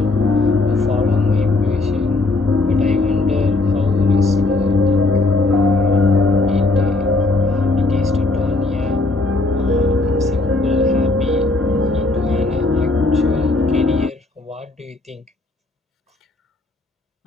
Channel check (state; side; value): quieter; right; 3.1 dB